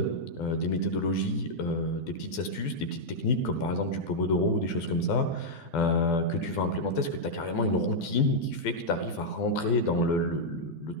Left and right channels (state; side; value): late; right; 12 ms